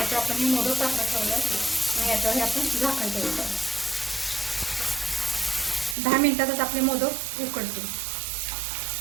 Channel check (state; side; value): drops out; left; at 6.0 s